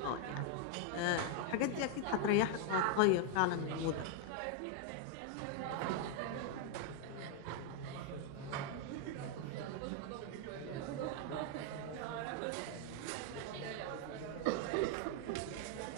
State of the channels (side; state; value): both; different; correlation 0.00